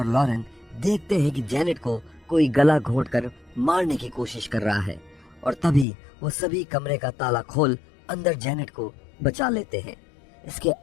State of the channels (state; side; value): drops out; right; at 5.9 s